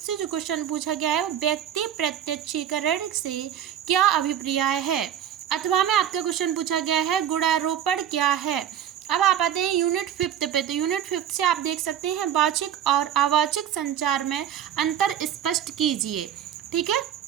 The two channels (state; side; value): quieter; left; 10.0 dB